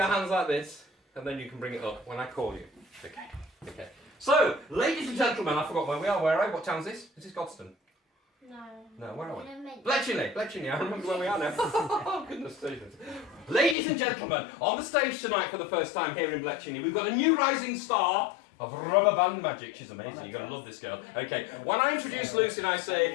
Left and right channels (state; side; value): drops out; right; at 13.8 s